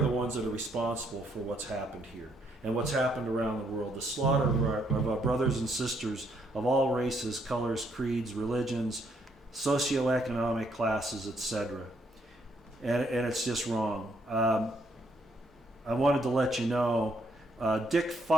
the ones that are responsible for what's happened here and what's happened around the world. The slaughter of our brothers and sisters of all races, colors, creeds, religions, socioeconomic classes, etc. And it's just wrong. I wanted to let you know, Dick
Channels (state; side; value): normal; both; correlation 0.72